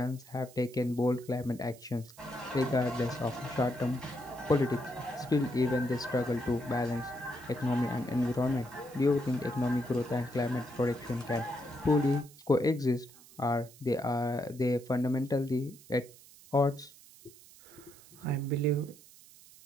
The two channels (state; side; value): noise; right; hiss, 22 dB below the sound